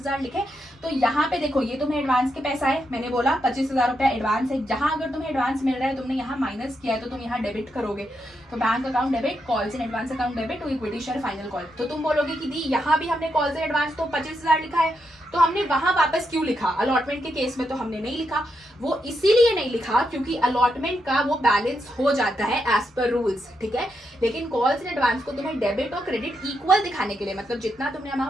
लिखे। तो यहाँ पे देखो ये तुम्हें एडवांस के पैसा है, मैंने बोला 25,000 रुपया एडवांस है। जहां अगर तुम्हें एडवांस मिल रहा है तुमने यहाँ माइनस किया है तो तुम यहाँ डेबिट करोगे। तो bank account debit, calls in advance account debit, तो इक्विटी शेयर फाइनल कॉल। तो तुम बोलोगे कि दी यहाँ भी हमने कॉल्स इन एडवांस तो 25,000 लिखा है, तो हमने वहां वापस क्यों लिखा? अलॉटमेंट के केस में तो हमने नहीं लिखा। वो इसीलिए नहीं लिखा क्योंकि अलॉटमेंट का वो बैलेंस हो जाता है एज पर रूल्स, ठीक है। लेकिन कॉल्स इन एडवांस को तुम्हें डेबिट और क्रेडिट इक्वल दिखाने के लिए, मतलब जितना तुमने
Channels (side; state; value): both; normal; correlation 0.82